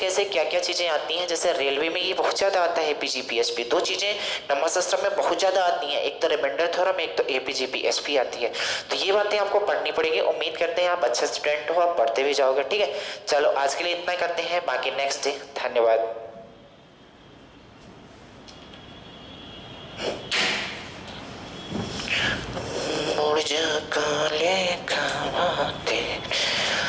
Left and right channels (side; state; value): both; identical; correlation 1.00